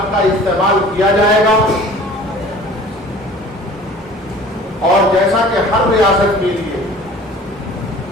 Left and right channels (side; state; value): both; normal; correlation 0.46